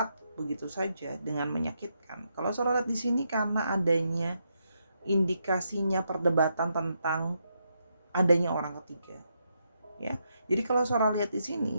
begitu saja dengan menyakitkan? Kalau Sora lihat di sini karena adanya indikasinya perdebatan tentang adanya orang ketiga. Ya. Jadi kalau Sora lihat di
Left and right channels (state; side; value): inverted; both; correlation -0.80